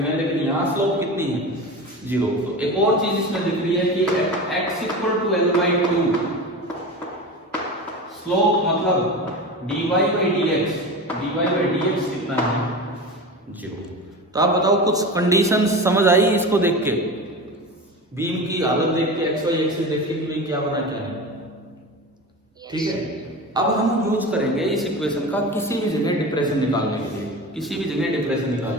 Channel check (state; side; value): normal; both; correlation 0.29